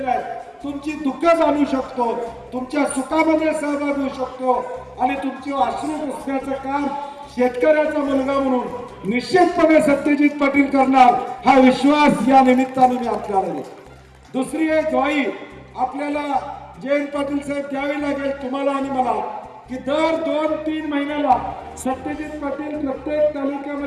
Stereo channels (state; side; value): identical; both; correlation 1.00